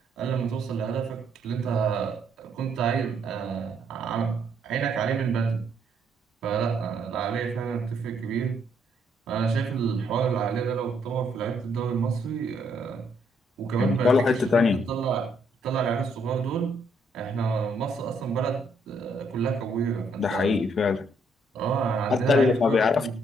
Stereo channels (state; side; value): normal; both; correlation 0.71